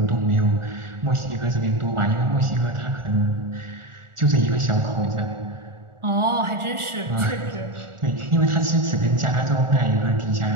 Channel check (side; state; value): left; late; 1.4 ms